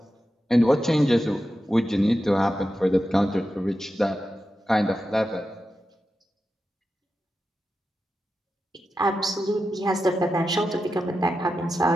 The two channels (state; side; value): normal; both; correlation 0.90